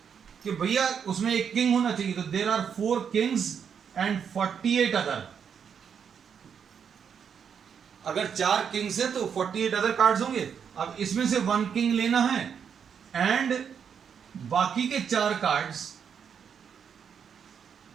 कि भैया उसमें एक किंग होना चाहिए, तो there are 4 kings and 48 other. अगर 4 किंग्स है तो 48 अदर कार्ड्स होंगे। अब इसमें से 1 किंग लेना है एंड बाकी के 4 कार्ड्स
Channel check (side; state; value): left; quieter; 7.3 dB